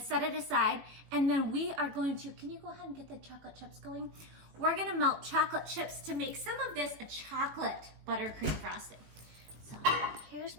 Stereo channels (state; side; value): late; left; 18 ms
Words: it aside. And then we are going to, can you go ahead and get the chocolate chips going? We're gonna melt chocolate chips to make some of this a chocolate buttercream frosting. So here's